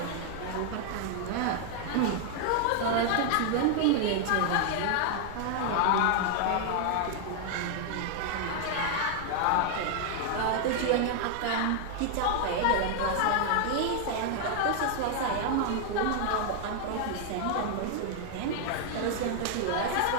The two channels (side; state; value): both; different; correlation 0.00